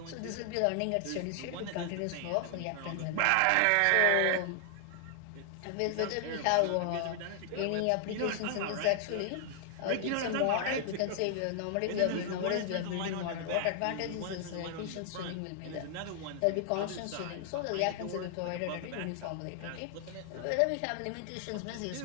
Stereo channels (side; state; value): both; different; correlation 0.00